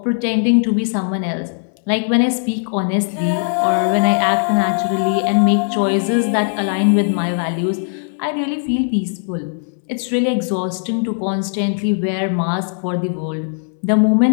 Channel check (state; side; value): silent; right; 67 dB below the other